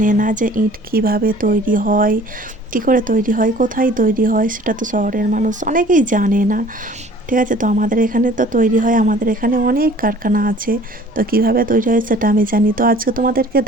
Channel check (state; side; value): normal; both; correlation 0.50